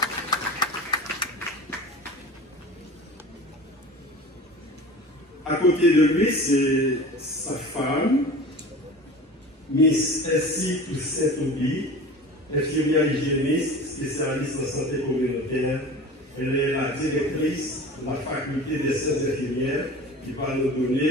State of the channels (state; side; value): normal; both; correlation 0.37